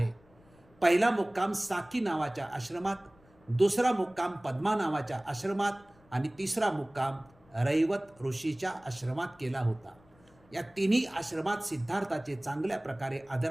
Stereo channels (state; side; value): noise; left; rumble, 29 dB below the sound